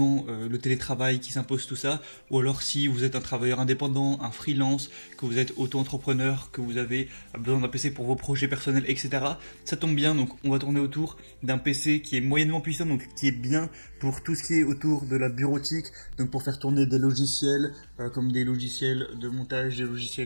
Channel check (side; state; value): both; inverted; correlation -1.00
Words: le télétravail qui s'impose tout ça, ou alors si vous êtes un travailleur indépendant, un freelance, que vous êtes auto-entrepreneur, que vous avez besoin d'un PC pour vos projets personnels, etc. Ça tombe bien, donc on va tourner autour d'un PC qui est moyennement puissant, donc qui est bien pour tout ce qui est autour de la bureautique, donc pour faire tourner des logiciels, comme des logiciels de montage, des